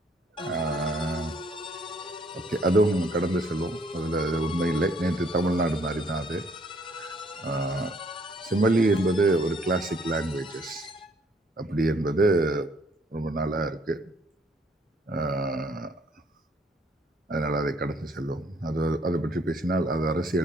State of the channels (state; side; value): normal; both; correlation 0.65